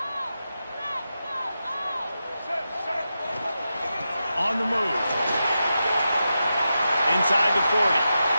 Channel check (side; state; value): both; inverted; correlation -0.89